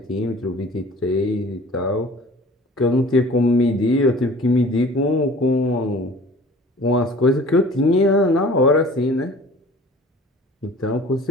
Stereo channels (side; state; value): both; normal; correlation 0.46